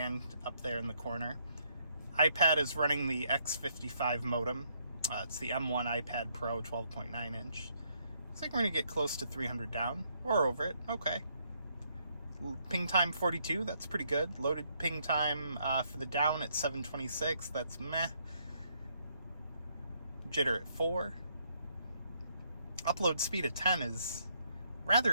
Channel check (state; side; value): inverted; both; correlation -0.72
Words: up there in the corner. iPad is running the X55 modem. It's the M1 iPad Pro 12.9 inch. Looks like we're gonna get close to 300 down, or over it, okay. Ping time 42, that's pretty good. Loaded ping time for the down at 726, that's meh. Jitter at 4. Upload speed at 10 is